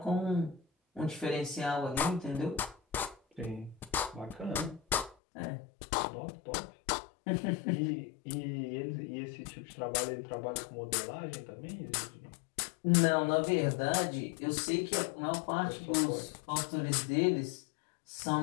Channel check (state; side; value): drops out; right; at 5.2 s